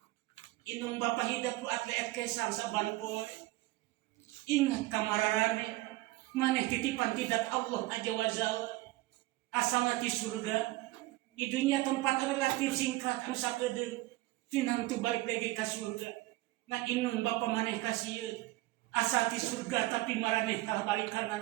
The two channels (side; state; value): left; quieter; 19.1 dB